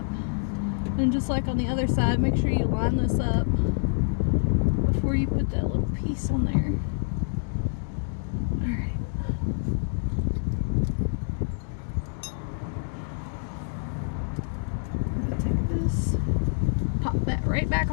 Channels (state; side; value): silent; right; digital silence